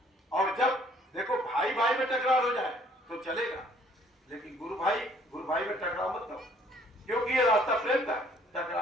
और जब देखो भाई भाई में टकराव हो जाए तो चलेगा, लेकिन गुरु भाई में टकराव मत करो, क्योंकि ये रास्ता प्रेम का,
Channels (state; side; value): normal; both; correlation 0.60